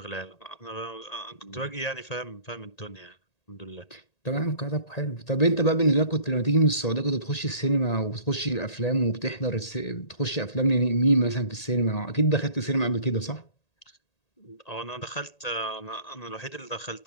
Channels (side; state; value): right; late; 1.8 ms